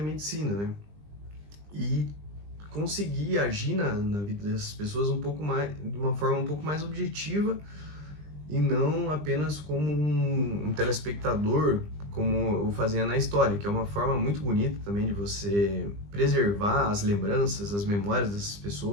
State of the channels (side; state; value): left; late; 20 ms